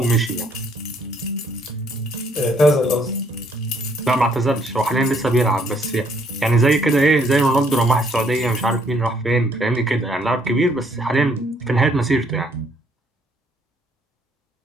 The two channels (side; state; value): both; normal; correlation 0.67